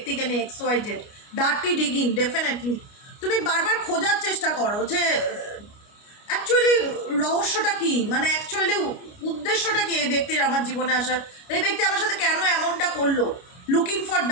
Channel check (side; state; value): right; late; 29 ms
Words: নিয়ে, XYZ ডার্টি ডিগিং। ডেফিনেটলি তুমি বারবার খোঁজার চেষ্টা করো যে অ্যাকচুয়ালি রহস্যটা কি, মানে অ্যাকচুয়ালি উদ্দেশ্যটা কি এই ব্যক্তির আমার জীবনে আসার, এই ব্যক্তি আমার সাথে কেন এমনটা করলো। Looking for